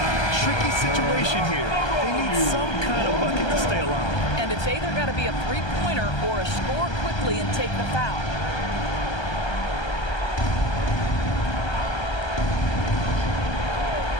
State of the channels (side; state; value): right; late; 1.3 ms